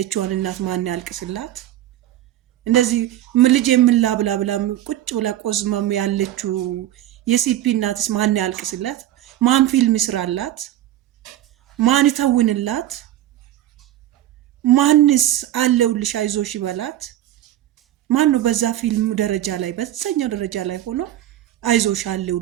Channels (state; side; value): quieter; left; 13.2 dB